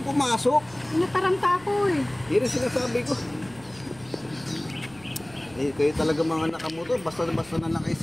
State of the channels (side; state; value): right; noise; hum, 24 dB below the sound